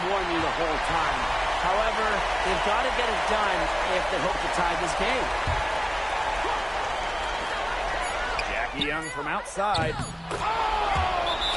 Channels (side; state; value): both; identical; correlation 1.00